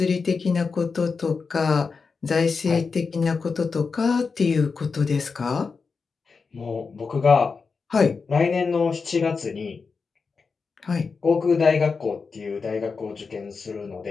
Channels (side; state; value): right; quieter; 4.9 dB